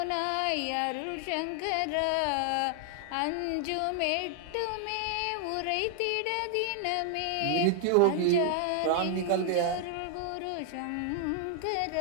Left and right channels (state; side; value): different; both; correlation 0.00